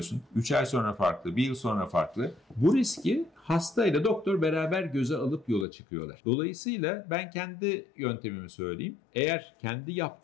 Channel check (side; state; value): right; drops out; at 5.7 s